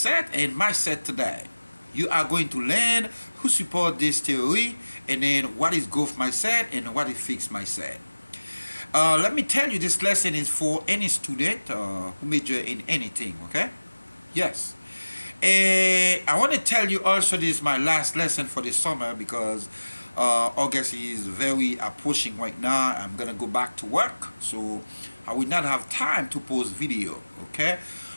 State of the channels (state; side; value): inverted; both; correlation -1.00